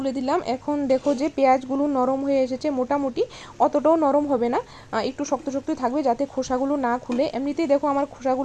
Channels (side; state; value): both; identical; correlation 1.00